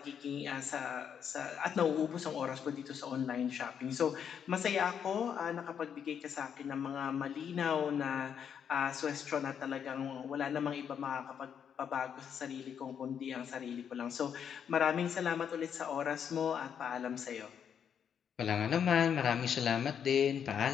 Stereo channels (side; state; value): right; quieter; 8.0 dB